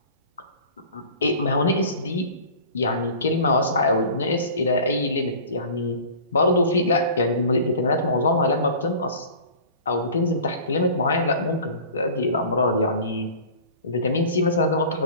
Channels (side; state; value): both; inverted; correlation -0.41